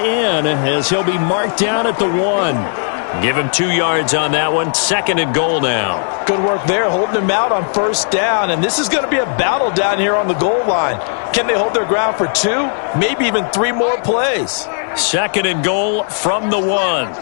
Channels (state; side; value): silent; right; digital silence